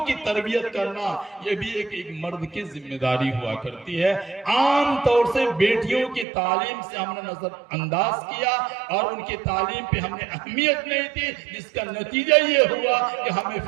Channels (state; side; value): drops out; left; at 6.2 s